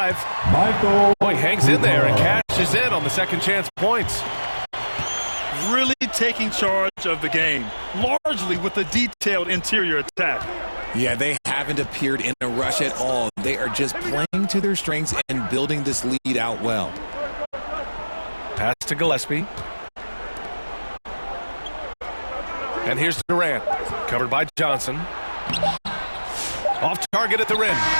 Michael. Boy, hangs in there and cashes in on the second chance points. Really taking charge of the game, largely with a detailed interior attack. Yeah, they haven't appeared in a rush at all. They are just playing to their strengths and building this lead out well. Pass to Gillespie. And here's Durant. Covered by Johnson. Off target at the rim.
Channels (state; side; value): inverted; both; correlation -1.00